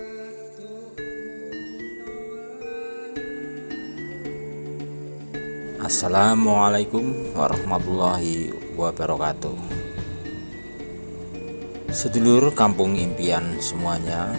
warahmatullahi wabarakatuh. Sedulur kampung impian semuanya,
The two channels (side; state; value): both; inverted; correlation -1.00